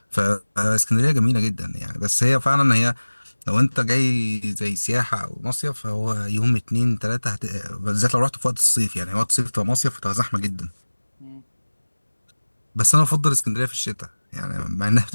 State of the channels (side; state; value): both; inverted; correlation -1.00